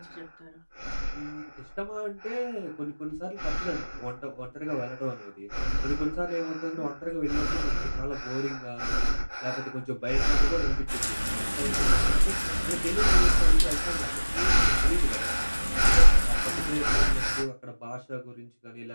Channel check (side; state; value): both; inverted; correlation -1.00